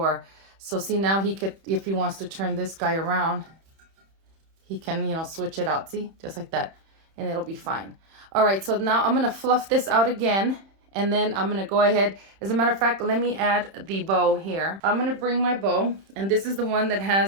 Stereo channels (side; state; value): left; late; 31 ms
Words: So see, now he could, if he wants to turn this guy around, he can, you know, switch it out, see, just like that, and it'll be fine. All right, so now I'm gonna fluff this out again, and then I'm gonna go ahead. As a matter of fact, let me add the bow here. I'm gonna bring my bow, and this is the one that